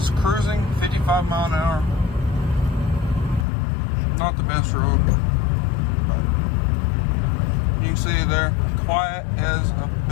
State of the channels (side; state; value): right; drops out; at 3.5 s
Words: cruising 55 mile an hour. Not the best road, but you can see there, quiet as a